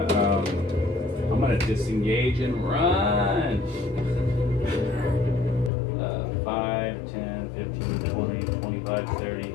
I'm gonna disengage and run. 5, 10, 15, 20, 25, 30,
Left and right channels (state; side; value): drops out; right; at 5.7 s